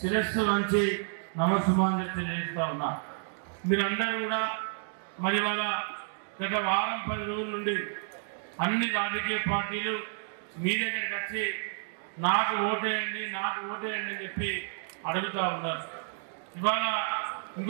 వంచి నమస్సుమాంజలి తెలియజేస్తా ఉన్నా. మీరందరూ కూడా మరి వాళ్ళ గత వారం 10 రోజుల నుండి అన్ని రాజకీయ పార్టీలు మీ దగ్గరికి వచ్చి నాకు ఓటేయండి అని చెప్పి అడుగుతూ ఉన్నారు. ఇవాళ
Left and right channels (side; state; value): left; silent; digital silence